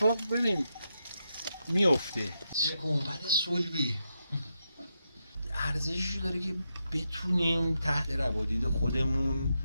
ببین میفته. چه گنبد صلبی ارزشی داره که بتونیم تحت روادید خودمون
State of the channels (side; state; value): both; inverted; correlation -0.85